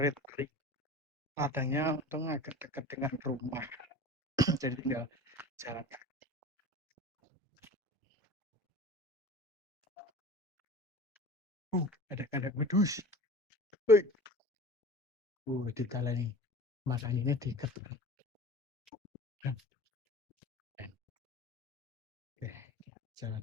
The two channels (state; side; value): normal; both; correlation 0.38